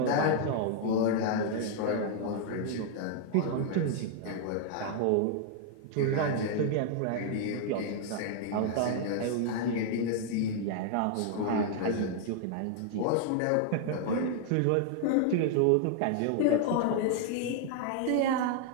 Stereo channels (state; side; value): different; both; correlation 0.00